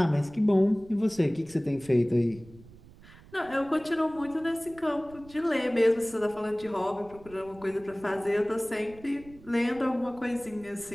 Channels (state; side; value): noise; right; rumble, 22 dB below the sound